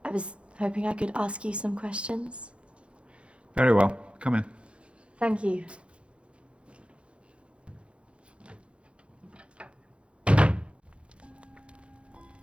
I was hoping I could ask you some questions. Very well. Come in. Thank you.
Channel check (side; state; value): left; late; 0.059 ms